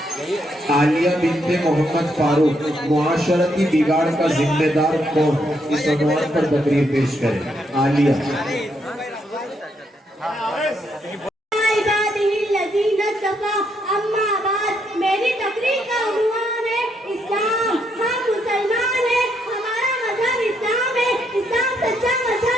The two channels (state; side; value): normal; both; correlation 0.76